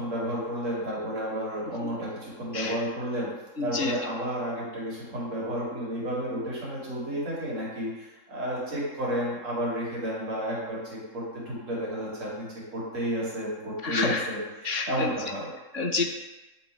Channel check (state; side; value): late; left; 3.7 ms